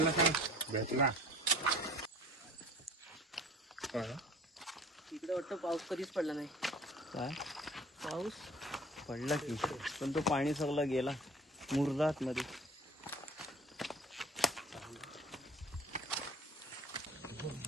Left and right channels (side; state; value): both; normal; correlation 0.45